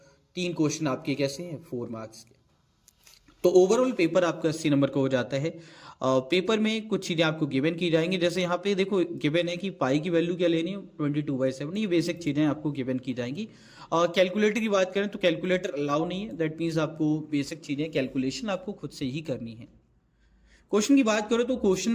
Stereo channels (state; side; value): identical; both; correlation 1.00